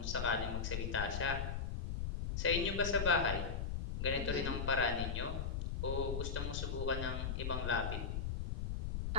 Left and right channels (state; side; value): noise; left; rumble, 2 dB below the sound